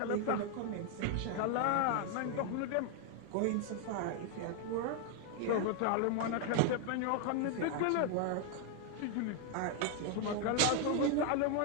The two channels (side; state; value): both; different; correlation 0.00